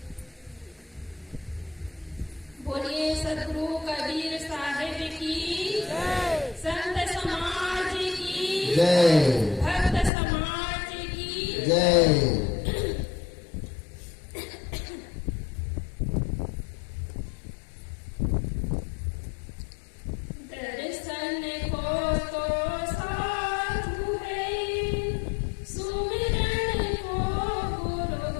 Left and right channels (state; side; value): drops out; right; at 10.1 s